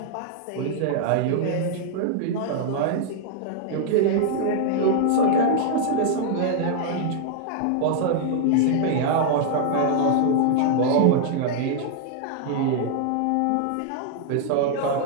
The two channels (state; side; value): different; both; correlation -0.01